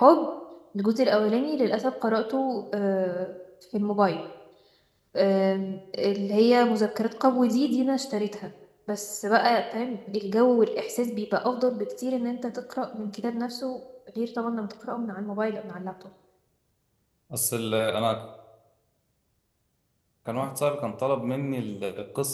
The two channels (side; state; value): both; identical; correlation 1.00